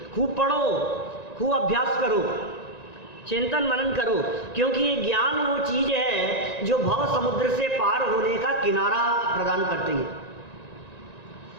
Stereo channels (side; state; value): right; late; 1.9 ms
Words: खूब पढ़ो, खूब अभ्यास करो, चिंतन मनन करो, क्योंकि ये ज्ञान वो चीज है जो भव समुद्र से पार होने का किनारा प्रदान करती है।